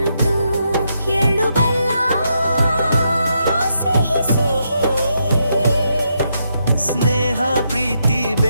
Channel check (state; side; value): inverted; both; correlation -0.80